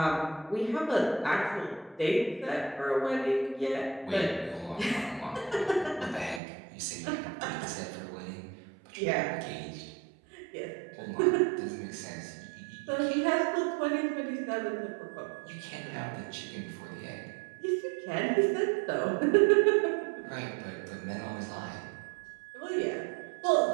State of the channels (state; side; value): drops out; left; at 6.4 s